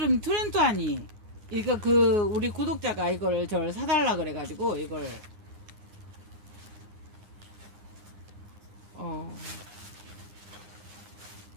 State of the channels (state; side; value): late; left; 9.8 ms